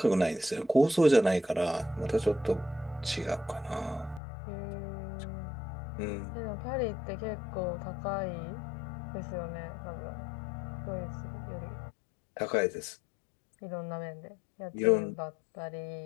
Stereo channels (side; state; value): right; drops out; at 4.2 s